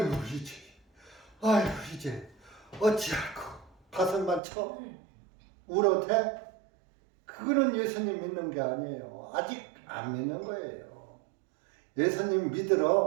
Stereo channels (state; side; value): drops out; left; at 4.4 s